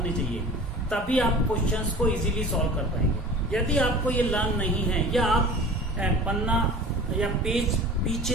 चाहिए, तभी आप क्वेश्चंस को इजीली सॉल्व कर पाएंगे। यदि आपको ये लर्न नहीं है या आप पन्ना या पेज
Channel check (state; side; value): normal; both; correlation 0.40